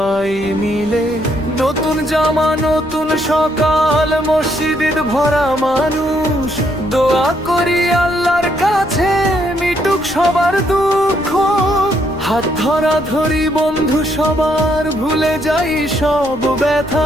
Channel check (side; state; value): left; noise; rumble, 18 dB below the sound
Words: মিলে। নতুন জামা নতুন সকাল, মসজিদ ভরা মানুষ, দোয়া করি আল্লাহর কাছে মিটুক সবার দুঃখ। হাত ধরা ধরি বন্ধু সবার, ভুলে যাই সব